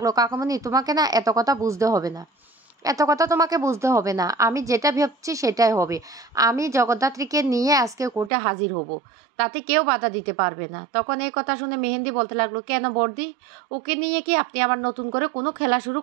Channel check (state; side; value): drops out; left; at 8.3 s